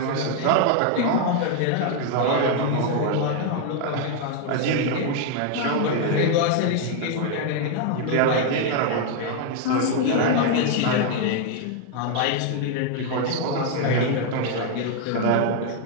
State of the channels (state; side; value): different; both; correlation 0.00